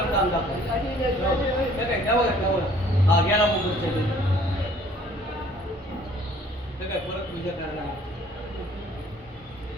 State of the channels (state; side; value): normal; both; correlation 0.56